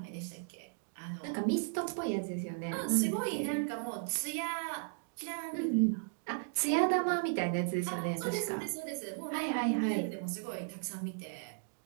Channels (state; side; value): silent; left; digital silence